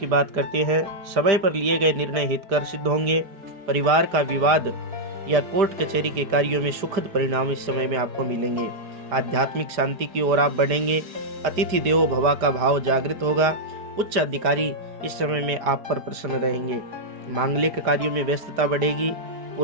बात करते हैं। समय पर लिए गए निर्णय हितकर सिद्ध होंगे। परिवार का विवाद या कोर्ट कचहरी के कार्यों में सुखद परिणाम इस समय में आपको मिलेंगे। आध्यात्मिक शांति की ओर आप बढ़ेंगे। अतिथि देवो भव का भाव जागृत होगा। उच्च अधिकारी इस समय में आप पर प्रसन्न रहेंगे। मांगलिक कार्यों में व्यस्तता बढ़ेगी।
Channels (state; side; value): late; left; 4.7 ms